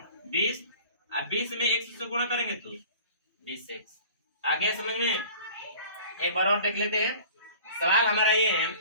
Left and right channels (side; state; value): both; inverted; correlation -0.45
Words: 20, अब 20 में x से गुणा करेंगे तो 20x। आगे समझ में? एक बार और देख लेते हैं। सवाल हमारा ये है,